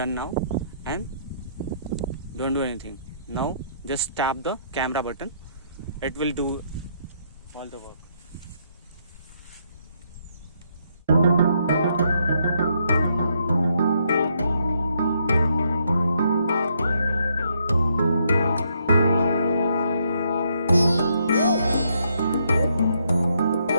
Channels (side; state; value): both; inverted; correlation -0.73